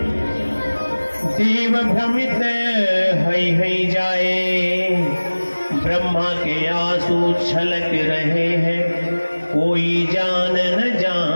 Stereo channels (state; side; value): inverted; both; correlation -1.00